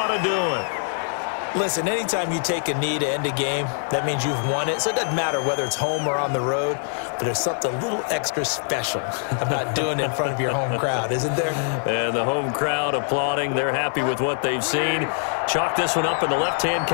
to do it. Listen, anytime you take a knee to end a game, that means you've won it. So it doesn't matter whether it's home or on the road, but there's something a little extra special about doing it in front of your home crowd, isn't there? And the home crowd applauding. They're happy with what they've seen. Chalk this one up in the left-hand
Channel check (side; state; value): right; silent; digital silence